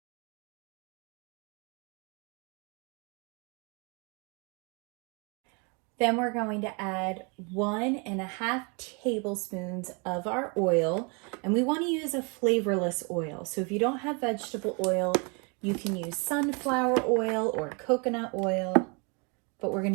Then we're going to add 1.5 tablespoons of our oil, and we want to use a flavorless oil. So if you don't have vegetable oil, you can use sunflower oil or coconut oil, but we're going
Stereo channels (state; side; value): quieter; left; 33.3 dB